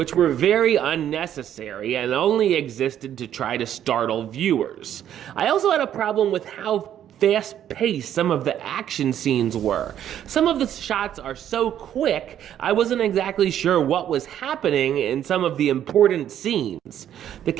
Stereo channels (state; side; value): quieter; left; 10.5 dB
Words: were very unnecessary and only existed to try to startle viewers. I also had a problem with how fast-paced some of the action scenes were. Some of the shots are so quick, I wasn't exactly sure what was happening in some of the important scenes. The